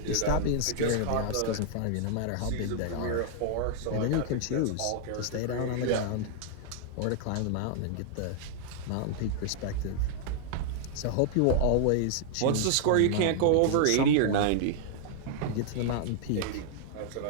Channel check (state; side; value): different; both; correlation -0.01